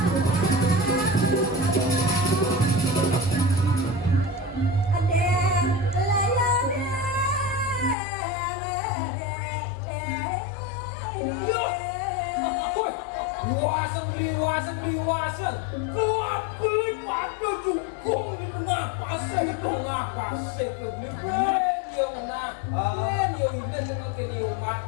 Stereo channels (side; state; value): right; drops out; at 8.0 s